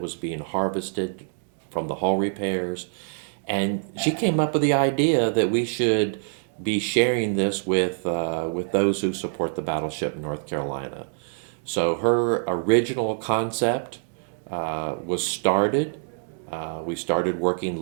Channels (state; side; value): silent; left; 62 dB below the other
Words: was being harvested from the hull repairs, and she came up with the idea that we should be sharing this with those who support the Battleship North Carolina. So her original concept was started. We started working